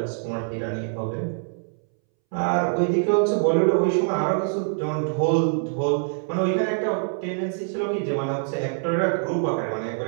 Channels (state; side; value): silent; left; 62 dB below the other